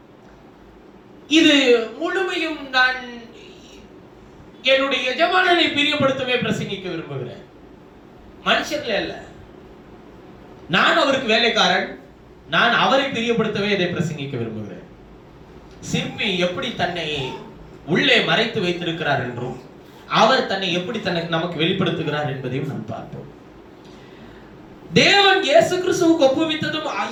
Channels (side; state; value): both; identical; correlation 1.00